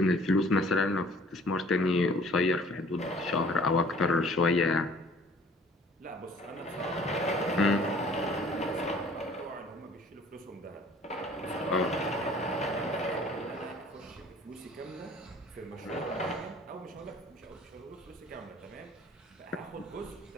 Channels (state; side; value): normal; both; correlation 0.53